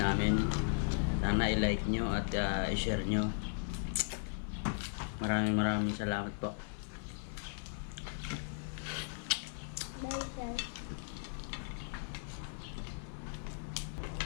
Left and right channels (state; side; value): silent; right; 53 dB below the other